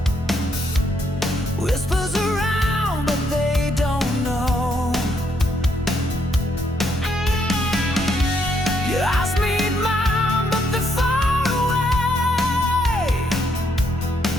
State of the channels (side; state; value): both; normal; correlation 0.74